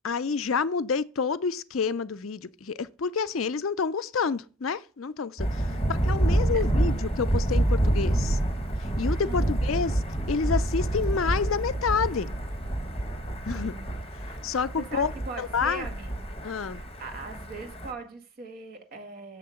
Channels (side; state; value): both; normal; correlation 0.50